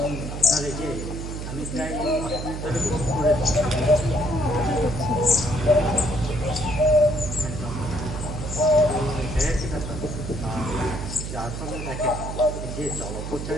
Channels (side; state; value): right; noise; hum, 6 dB below the sound